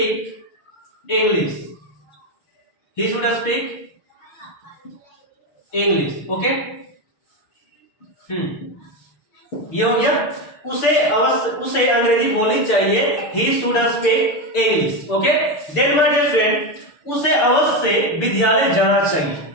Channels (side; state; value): right; late; 6.8 ms